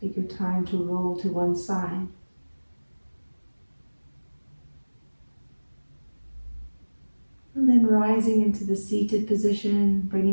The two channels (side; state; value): both; inverted; correlation -1.00